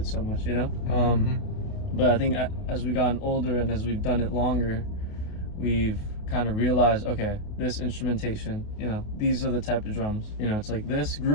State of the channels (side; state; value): right; late; 28 ms